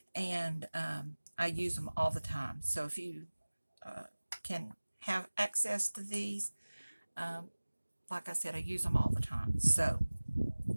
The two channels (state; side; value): inverted; both; correlation -1.00